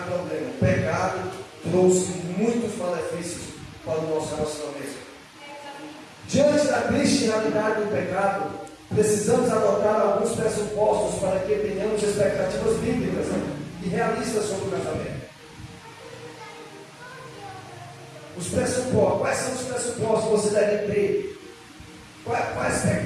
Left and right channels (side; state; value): both; identical; correlation 1.00